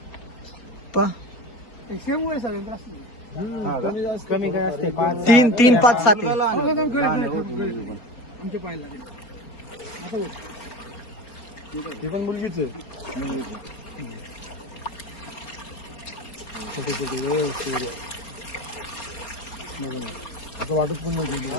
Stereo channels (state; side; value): late; right; 4.3 ms